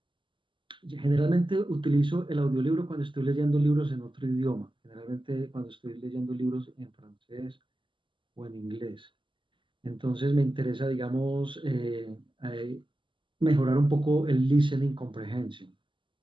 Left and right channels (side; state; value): left; late; 0.24 ms